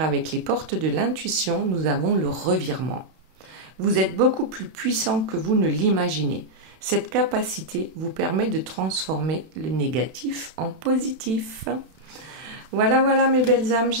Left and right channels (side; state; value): left; late; 32 ms